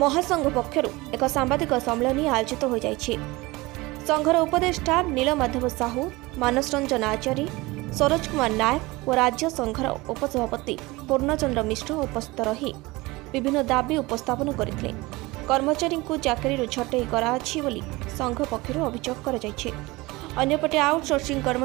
पक्षर एक सांबादिक सम्मेलन आयोजित हो जाइछि। संघर उपदेष्टा नीलमाधव साहू, मानस रंजन आचार्य, सरोज कुमार नायक और राज्य संघर उपसभापति पूर्णचंद्र मिश्र उपस्थित रही विभिन्न दाबी उपस्थापन करथिले। कर्मचारी को चाकरी छटई कराछि बोली संघ पक्षर अभियोग कराଯାଇଛି। अन्यपटे आउटसोर्सिंग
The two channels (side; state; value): left; quieter; 21.9 dB